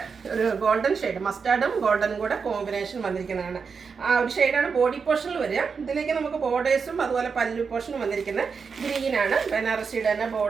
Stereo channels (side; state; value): left; quieter; 5.6 dB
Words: ഒരു ഗോൾഡൻ ഷെയ്ഡ്, മസ്റ്റാർഡും ഗോൾഡനും കൂടെ കോമ്പിനേഷൻ വന്നിരിക്കുന്നതാണ്. ആ ഒരു ഷെയ്ഡാണ് ബോഡി പോർഷനിൽ വരിക. ഇതിലേക്ക് നമുക്ക് ബോർഡേഴ്സും അതുപോലെ പല്ലു പോർഷനും വന്നിരിക്കുന്നത് ഗ്രീനാണ്. ബനാറസിയുടെ തന്നെ